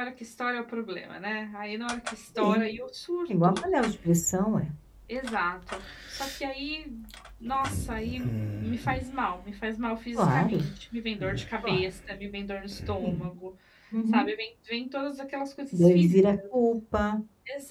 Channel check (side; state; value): both; identical; correlation 1.00